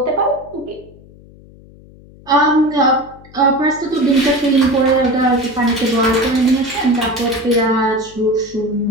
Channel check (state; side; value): noise; left; hum, 23 dB below the sound